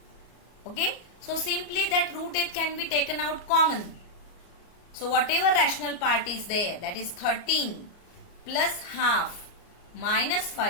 Okay. So simply that root 8 can be taken out common. So whatever rational part is there, that is 13 plus half minus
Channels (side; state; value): right; late; 34 ms